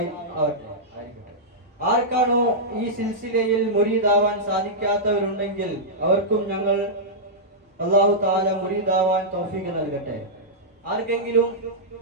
ആവട്ടെ. ആർക്കാണോ ഈ സിൽസിലയിൽ മുരീദാവാൻ സാധിക്കാത്തവരുണ്ടെങ്കിൽ അവർക്കും ഞങ്ങൾ അല്ലാഹു തആല മുരീദാവാൻ തൗഫീഖ് നൽകട്ടെ. ആർക്കെങ്കിലും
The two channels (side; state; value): both; normal; correlation -0.10